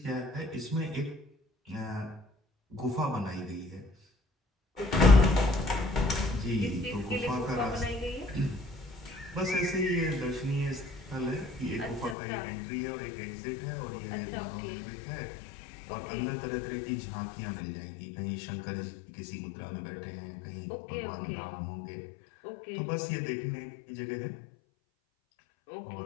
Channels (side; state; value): right; drops out; at 12.2 s